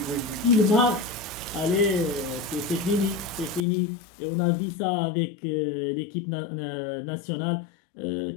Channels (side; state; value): right; drops out; at 3.7 s